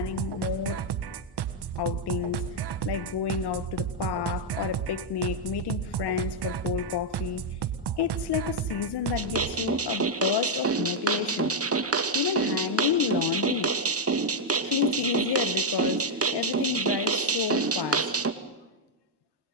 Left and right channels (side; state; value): both; normal; correlation -0.02